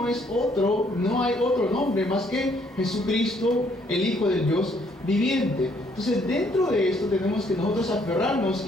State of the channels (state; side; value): normal; both; correlation 0.67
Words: hay otro nombre más que Jesucristo, el Hijo del Dios viviente. Entonces, dentro de esto tenemos que nosotros aferrarnos